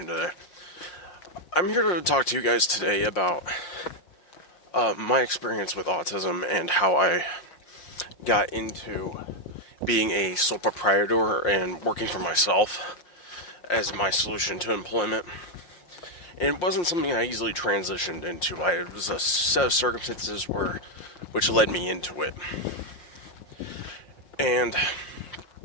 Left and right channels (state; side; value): late; right; 5.7 ms